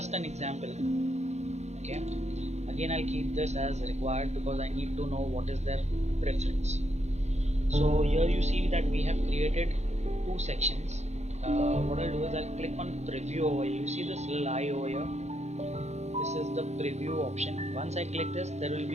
an example. Okay, again I'll keep this as required because I need to know what is their preference. So here you see that we have created 2 sections. What I'll do is I'll click on preview over here. You see this little eye over here, this is the preview option. Once I click this, there will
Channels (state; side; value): late; left; 0.32 ms